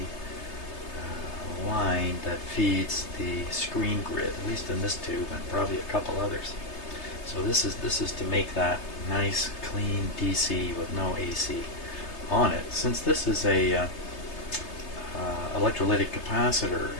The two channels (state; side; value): late; right; 3.3 ms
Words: line that feeds the screen grid, at least in this tube and probably a couple others. So this is to make that nice clean DC with no AC on it. Since this is a electrolytic capacitor,